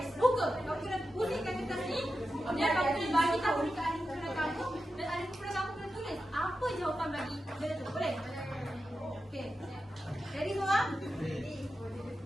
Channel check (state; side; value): normal; both; correlation 0.90